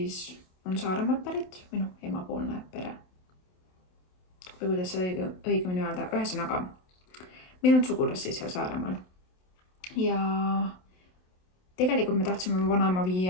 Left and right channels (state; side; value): late; right; 27 ms